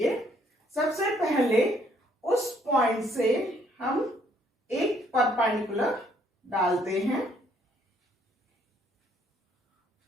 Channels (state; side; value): normal; both; correlation 0.66